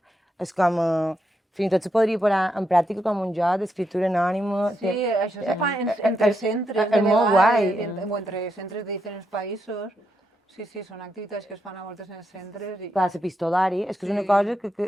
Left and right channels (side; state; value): both; normal; correlation 0.82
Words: És com... Fins i tot se podria posar en pràctica com un joc d'escriptura anònima. Sí, això se fa entre centres de vegades, o entre centres de diferents països. Sí, són activitats que es fan a voltes en els centres. Clar, l'epistolari, és que és una cosa